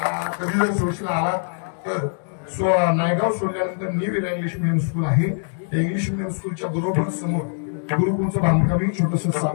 कधी जर सुळशीला आला तर नायगाव सोडल्यानंतर न्यू इरा इंग्लिश मिडियम स्कूल आहे. त्या इंग्लिश मिडियम स्कूलच्या बरोबर समोर गुरुकुलचं बांधकामही छोटंसं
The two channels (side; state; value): right; silent; digital silence